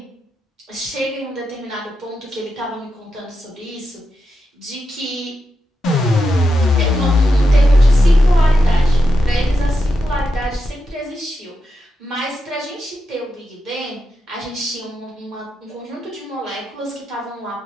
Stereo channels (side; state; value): both; normal; correlation 0.86